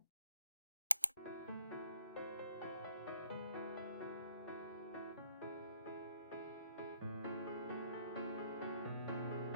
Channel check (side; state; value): both; inverted; correlation -0.63